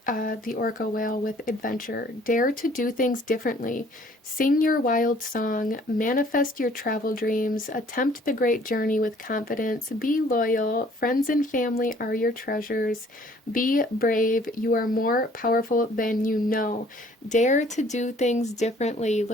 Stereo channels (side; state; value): both; normal; correlation 0.57